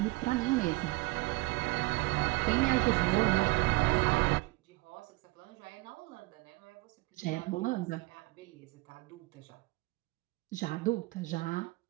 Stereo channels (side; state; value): left; quieter; 22.7 dB